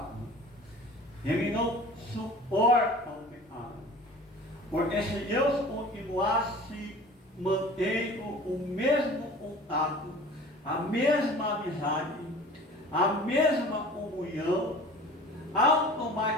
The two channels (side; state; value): both; normal; correlation 0.43